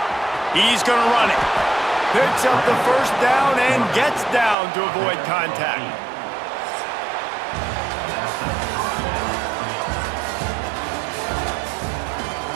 He's going to run it. Picks up the first down and gets down to avoid contact.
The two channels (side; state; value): left; drops out; at 4.5 s